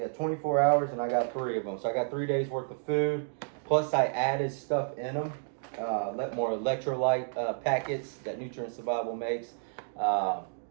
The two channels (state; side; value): silent; left; digital silence